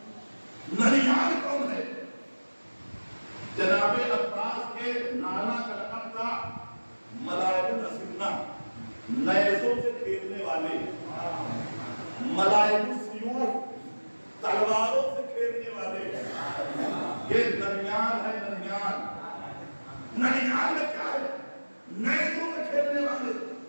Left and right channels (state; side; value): inverted; both; correlation -1.00